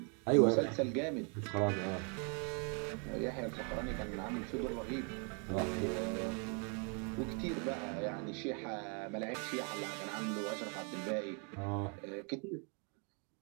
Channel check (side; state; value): left; quieter; 37.7 dB